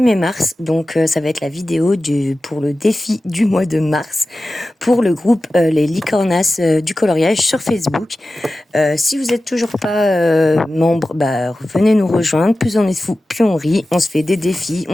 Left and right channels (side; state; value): both; normal; correlation 0.95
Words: mars, donc ça va être la vidéo pour le défi du mois de mars pour le groupe Les Licornas du coloriage sur Facebook. Si vous êtes toujours pas membre, venez nous rejoindre. Plus on est fou, plus on rit. On se fait des défis.